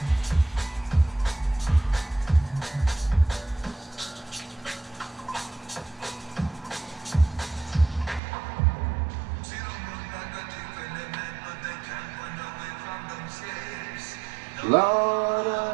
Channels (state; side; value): drops out; left; at 8.2 s